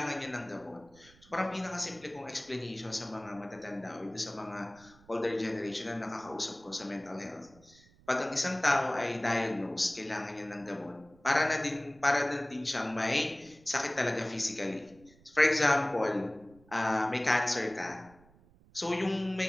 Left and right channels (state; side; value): noise; right; rumble, 27 dB below the sound